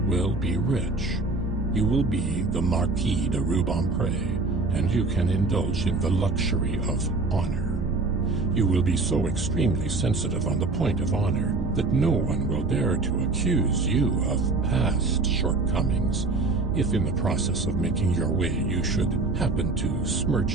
will be rich. You will be the Marquis de Rubempré, and you can indulge in the luxury of honor. You will be so extremely sensitive on the point of honor that no one will dare to accuse you of past shortcomings if in the process of making your way you should happen to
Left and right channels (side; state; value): left; quieter; 3.5 dB